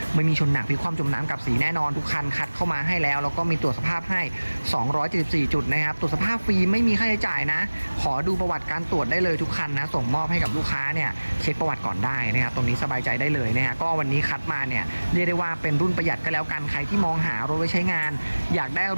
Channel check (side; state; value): both; inverted; correlation -1.00